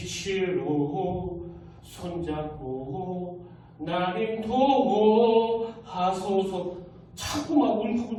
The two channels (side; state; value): both; identical; correlation 1.00